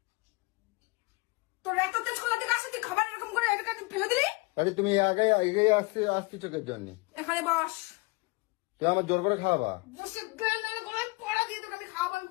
তোর এত তেজ কলা থেকে আসে তুই খাবার এরকম করে এটা ফেলে দিলি। তাহলে তুমি আগে এগিয়ে আসছি চোখের জন্য। এখানে বস। তুই আমার জোর করে খাওয়াবা। বসে গেলে গলায় পড়া দিয়ে তোকে আমি খাওয়াবো আমি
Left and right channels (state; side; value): quieter; right; 26.5 dB